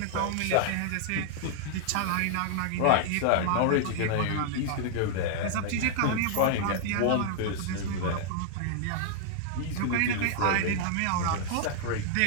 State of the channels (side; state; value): both; different; correlation -0.01